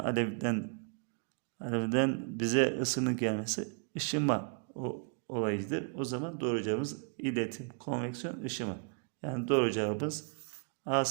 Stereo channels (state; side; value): quieter; left; 38.5 dB